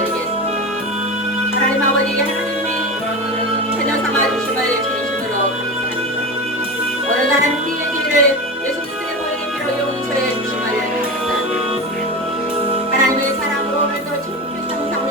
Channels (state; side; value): normal; both; correlation 0.25